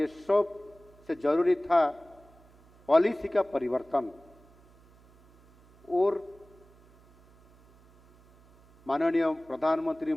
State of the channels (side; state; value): right; noise; hum, 28 dB below the sound